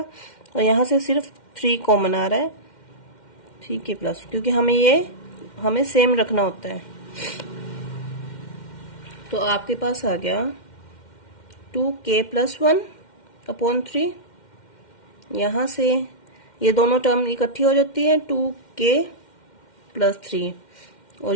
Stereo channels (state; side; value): late; right; 2.1 ms